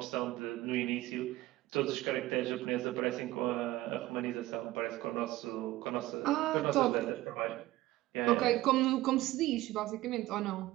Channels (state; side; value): quieter; left; 17.1 dB